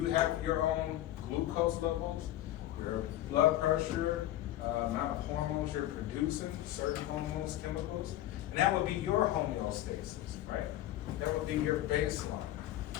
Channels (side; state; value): right; quieter; 13.9 dB